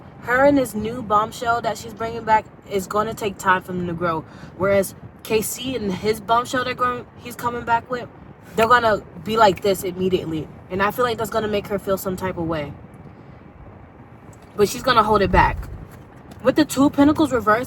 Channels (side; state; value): both; identical; correlation 1.00